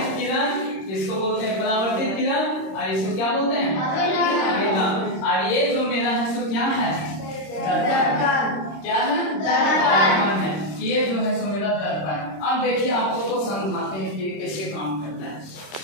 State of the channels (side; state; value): right; late; 26 ms